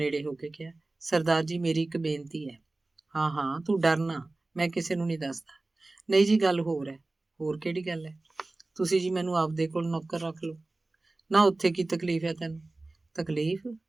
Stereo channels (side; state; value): left; quieter; 3.1 dB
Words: ਹੋ ਕੇ ਕਿਹਾ, ਸਰਦਾਰ ਜੀ ਮੇਰੀ ਇੱਕ ਬੇਨਤੀ ਹੈ। ਹਾਂ ਹਾਂ ਤੂੰ ਡਰ ਨਾ, ਮੈਂ ਕਿਸੇ ਨੂੰ ਨਹੀਂ ਦੱਸਦਾ। ਨਹੀਂ ਜੀ ਗੱਲ ਹੋਰ ਹੈ। ਹੋਰ ਕਿਹੜੀ ਗੱਲ ਹੈ? ਤੁਸੀਂ ਜੀ ਮੈਨੂੰ ਆਪਦੇ ਕੋਲ ਨੌਕਰ ਰੱਖ ਲਓ। ਨਾ ਉੱਥੇ ਕੀ ਤਕਲੀਫ ਹੈ ਤੈਨੂੰ? ਤਕਲੀਫ?